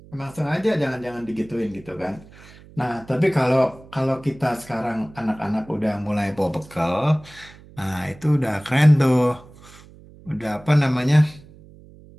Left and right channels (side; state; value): right; noise; hum, 22 dB below the sound